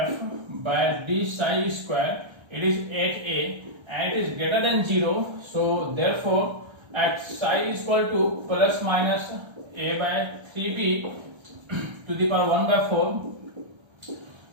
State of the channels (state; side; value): late; left; 1.3 ms